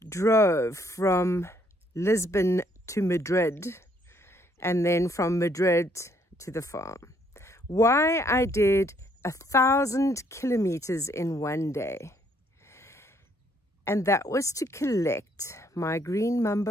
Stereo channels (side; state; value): both; normal; correlation 0.68